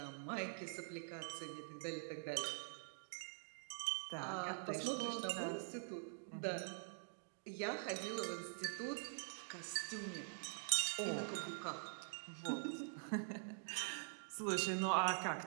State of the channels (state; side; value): silent; left; digital silence